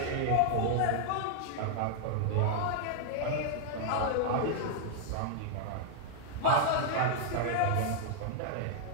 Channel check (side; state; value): both; different; correlation -0.01